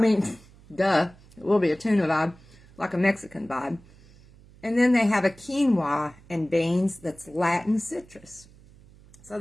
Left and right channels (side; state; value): right; noise; hum, 25 dB below the sound